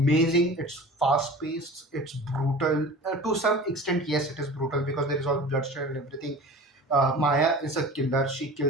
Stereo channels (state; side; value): normal; both; correlation 0.38